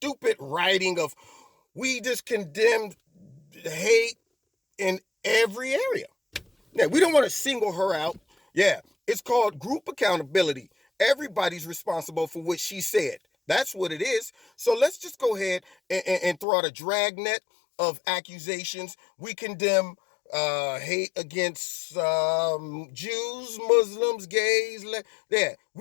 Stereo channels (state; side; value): drops out; right; at 16.4 s